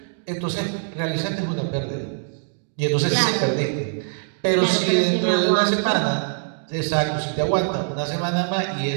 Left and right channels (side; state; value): left; silent; digital silence